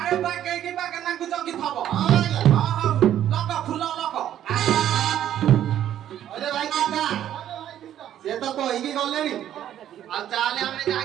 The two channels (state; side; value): quieter; left; 11.2 dB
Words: ଆରେ ବାଗେଇକି ବାଗେନାକୁ ଜଗିଥବ। ହଁ ଆଜ୍ଞା। ହଉ ଲଗ ଫୁଲ ଲଗ। ଅରେ ଭାଇ ଚିନ୍ତା ସେ ତ କହିକି ଗଲେଣି। ଆଉ ଚାଲେ ଆମେ ଯାହା